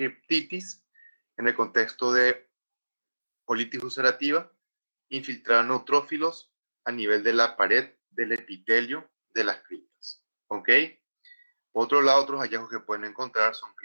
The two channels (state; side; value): inverted; both; correlation -1.00